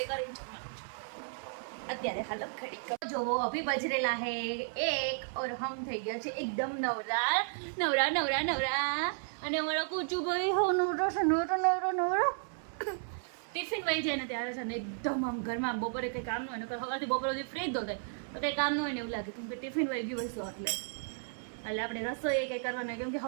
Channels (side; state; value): left; silent; 55 dB below the other